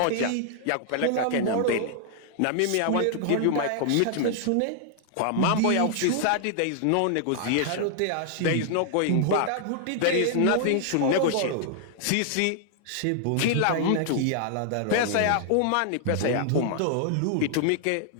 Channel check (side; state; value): both; different; correlation 0.00